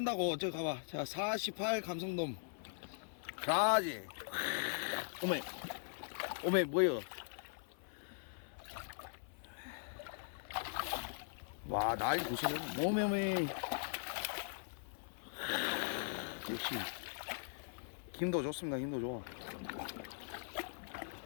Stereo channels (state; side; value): silent; right; 51 dB below the other